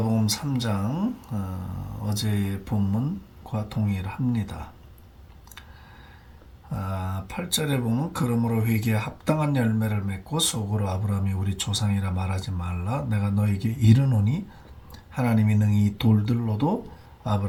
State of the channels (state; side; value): identical; both; correlation 1.00